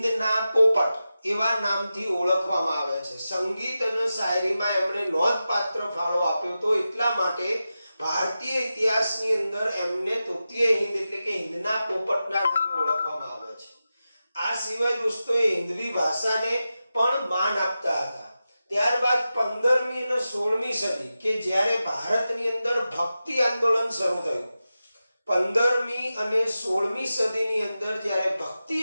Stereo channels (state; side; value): inverted; both; correlation -0.92